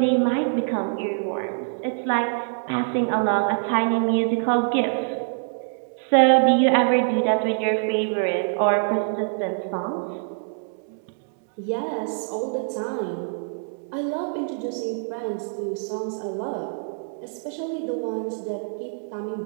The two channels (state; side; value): silent; left; digital silence